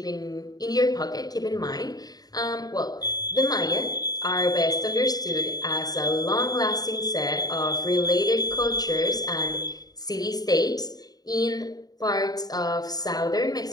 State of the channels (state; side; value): late; right; 0.19 ms